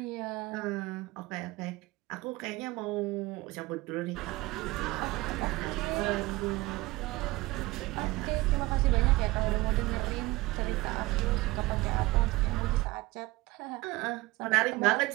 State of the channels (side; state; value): left; quieter; 20.9 dB